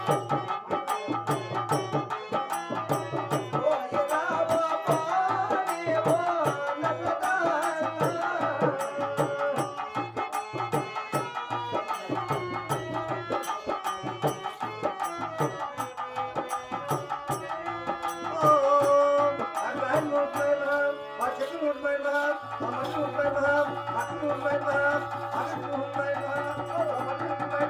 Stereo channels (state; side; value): identical; both; correlation 1.00